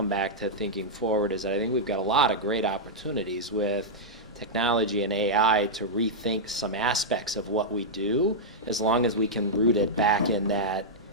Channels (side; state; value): both; normal; correlation -0.08